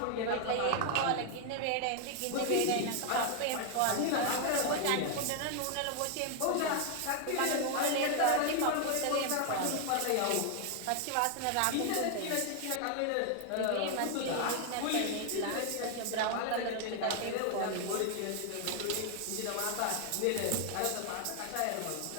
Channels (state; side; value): different; both; correlation 0.00